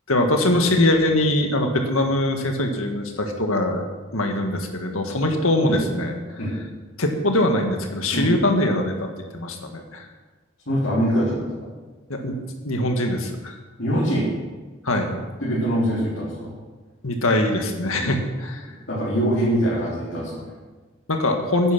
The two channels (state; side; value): normal; both; correlation 0.35